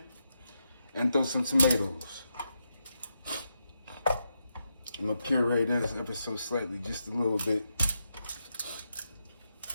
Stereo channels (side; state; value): both; inverted; correlation -0.85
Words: and throw some tomatoes. I'm gonna puree this ever so slightly, just a little bit.